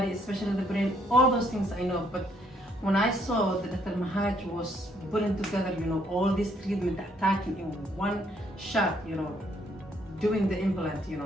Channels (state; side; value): normal; both; correlation 0.69